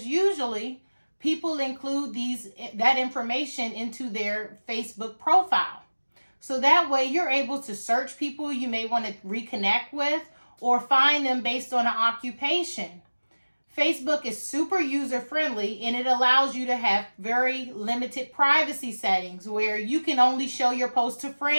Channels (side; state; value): both; inverted; correlation -1.00